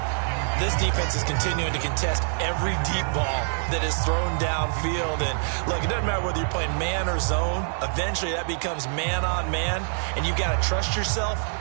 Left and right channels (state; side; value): silent; left; digital silence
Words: This defense is continuing to contest every deep ball that is thrown downfield. And look, it doesn't matter whether you're playing man or zone. Eventually that becomes man on man. And you've got to trust yourself